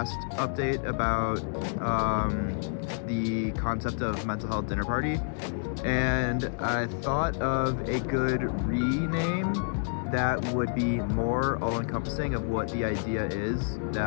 update about the concept of mental health dinner party, and I thought of a good rename that would be more all-encompassing of what the idea is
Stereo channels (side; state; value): right; silent; digital silence